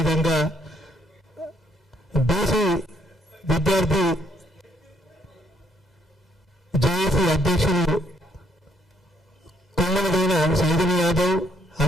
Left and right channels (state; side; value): normal; both; correlation 0.70